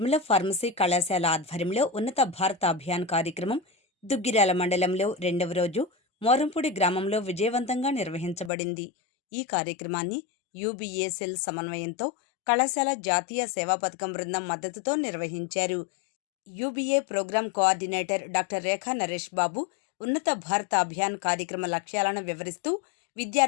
ఫార్మసీ కళాశాల ఆధ్వర్యంలో ఉన్నత భారత అభియాన్ కార్యక్రమం దుగ్గిరాల మండలంలో 2వ రోజు మోరంపూడి గ్రామంలో విజయవంతంగా నిర్వహించబడింది. ఈ కార్యక్రమాన్ని యూబీఏ సెల్ సమన్వయంతో కళాశాల జాతీయ సేవా పథకం బృందం మద్దతుతో నిర్వహించారు. యూబీఏ ప్రోగ్రాం కోఆర్డినేటర్ డాక్టర్ రేఖా నరేష్ బాబు ఉన్నత భారత అభియాన్ కార్యక్రమ లక్ష్యాలను వివరిస్తూ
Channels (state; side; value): drops out; right; at 8.5 s